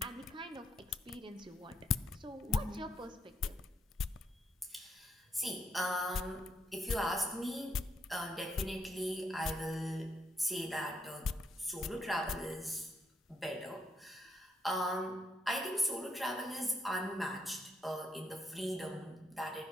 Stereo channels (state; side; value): normal; both; correlation 0.77